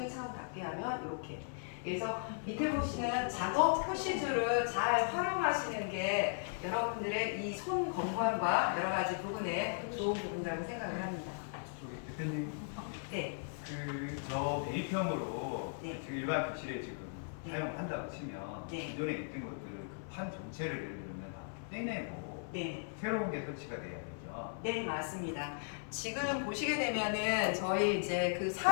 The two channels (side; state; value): right; silent; 53 dB below the other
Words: 창을 닫게 하면 이렇게. 그래서 밑에 보시는 작업 표시줄을 잘 활용하시는 게 여러분들의 이 손 건강과 여러 가지 부분에 좋은 부분이라고 생각을 합니다. 대표님, 네. 저 매입형으로 네. 지금 일반 교실에 지금 네. 사용한다고 치면 네. 기존에 있던 것들을 그 판 전체를 예를 들면 다 떼내고 네. 새로운 게 설치가 돼야 되죠. 네, 맞습니다. 지금 보시게 되면은 저희 이제 그